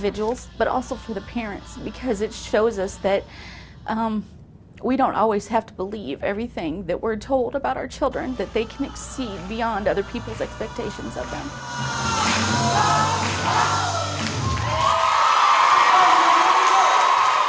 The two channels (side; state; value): both; identical; correlation 1.00